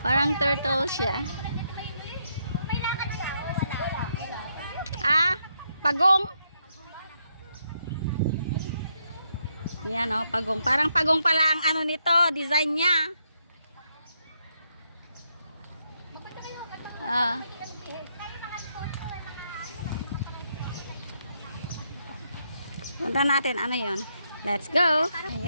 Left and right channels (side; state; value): both; inverted; correlation -0.78